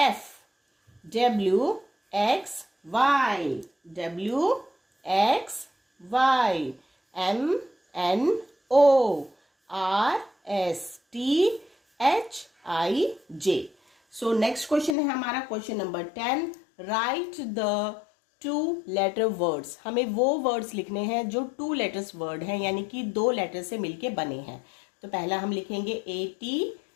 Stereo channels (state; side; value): drops out; right; at 15.0 s